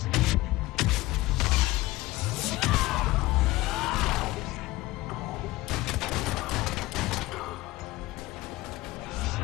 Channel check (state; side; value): quieter; right; 19.0 dB